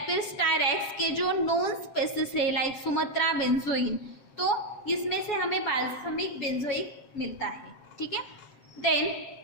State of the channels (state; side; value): late; right; 7.2 ms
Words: फिर स्टायरेक्स के जो नॉन स्पेसिस है लाइक सुमत्रा बेंजोइन, तो इसमें से हमें बाल्समिक बेंजोइक मिलता है. ठीक है. देन